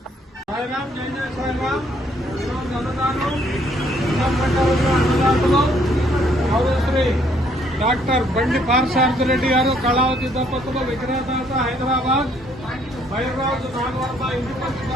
సాయిరామ్ జై జై సాయిరామ్. ఈరోజు అన్నదానం అన్నదాతలు గౌరవశ్రీ డాక్టర్ బండి పార్సార్థరెడ్డి గారు, కళావతి దంపతులు, విగ్రహదాత హైదరాబాద్, బైరాజు నాగవర్మ ఇంటిపల్లి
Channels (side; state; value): both; normal; correlation 0.66